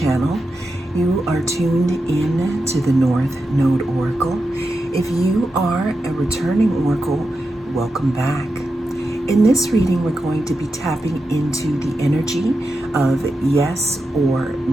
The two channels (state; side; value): normal; both; correlation 0.89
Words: You are tuned in to the North Node Oracle. If you are a returning Oracle, welcome back. In this reading, we're going to be tapping into the energy of yes or